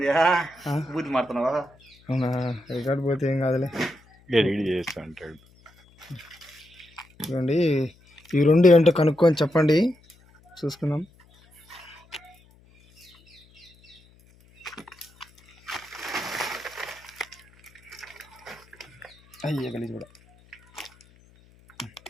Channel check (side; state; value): left; noise; hum, 29 dB below the sound